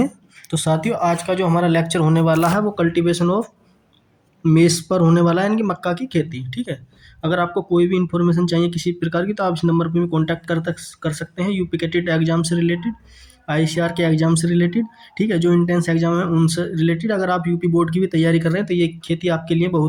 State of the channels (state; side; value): identical; both; correlation 1.00